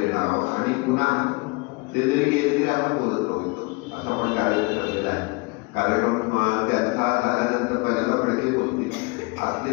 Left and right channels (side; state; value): right; quieter; 26.9 dB